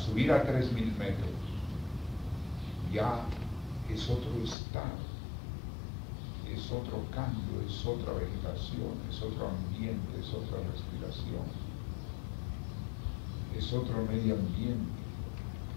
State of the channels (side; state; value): right; drops out; at 4.5 s